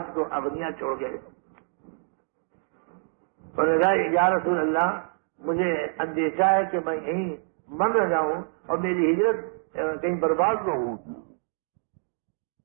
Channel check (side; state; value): left; silent; digital silence